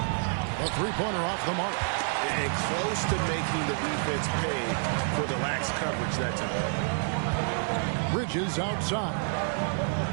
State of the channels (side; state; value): left; silent; 59 dB below the other